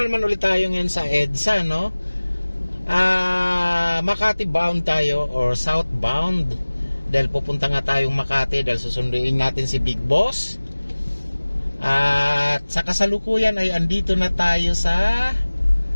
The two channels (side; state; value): both; inverted; correlation -1.00